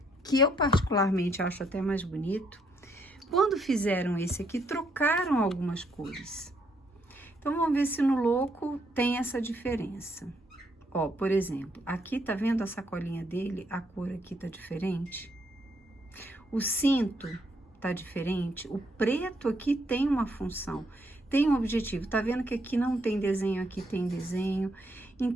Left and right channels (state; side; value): normal; both; correlation 0.73